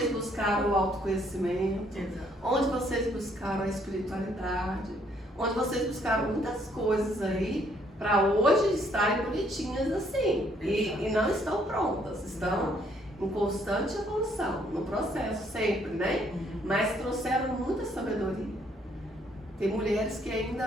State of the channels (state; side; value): normal; both; correlation 0.67